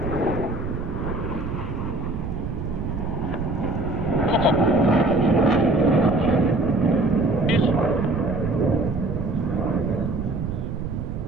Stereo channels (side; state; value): right; noise; rumble, 5 dB below the sound